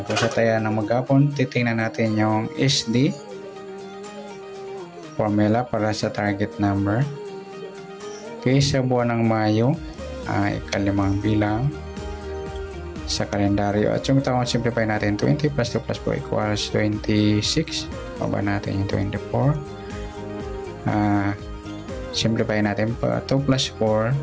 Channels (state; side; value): identical; both; correlation 1.00